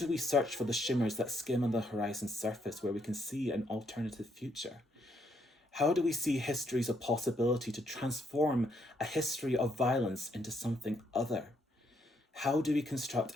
we search for the shimmers that skim on the horizon surface where we can see an alternative future? How do we see histories of possibility to transform a history of violence into something other? How do we construct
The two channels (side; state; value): both; normal; correlation 0.74